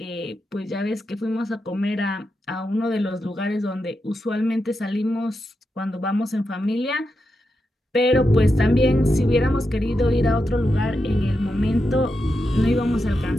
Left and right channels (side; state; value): both; normal; correlation 0.87